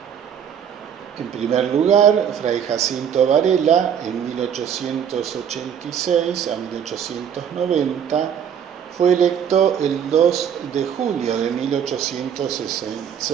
En primer lugar, Fray Jacinto Varela, en 1886 a 1890, Fue electo el 2 de julio de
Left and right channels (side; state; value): left; quieter; 8.3 dB